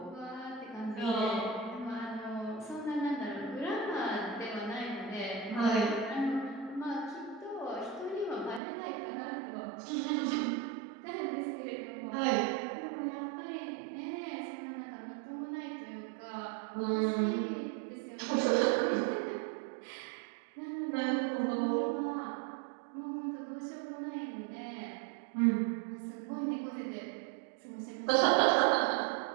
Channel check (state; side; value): drops out; left; at 8.6 s